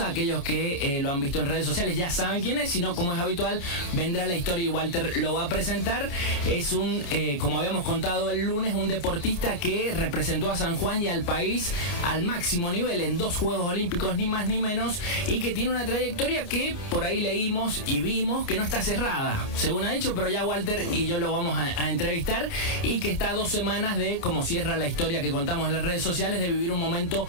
Aquellos que lo han visto en redes sociales ya saben quién es, si no, como es habitual, vendrá la historia y Walter lo va a presentar. Es un, como habíamos contado el lunes, un deportista que representó a San Juan y al país al máximo nivel en 2 Juegos Olímpicos, ni más ni menos, y que tiene una trayectoria que por ahí leímos y vimos que no está cerrada, según ha dicho, pero ya Walter y yo lo vamos a entrevistar, y que está a 2 semanas de, como cierra la historia que contamos en las redes sociales, de vivir un momento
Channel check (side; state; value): right; late; 29 ms